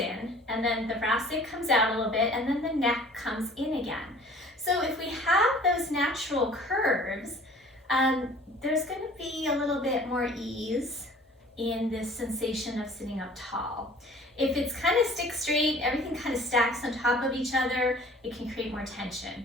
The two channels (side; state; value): both; normal; correlation 0.49